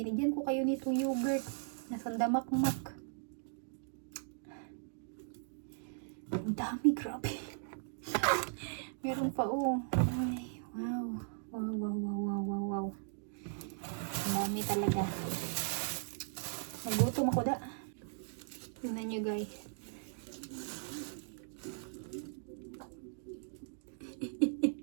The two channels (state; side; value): silent; left; digital silence